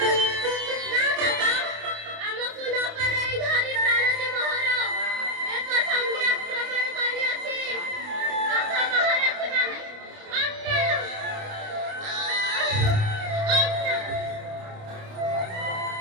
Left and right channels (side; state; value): left; late; 28 ms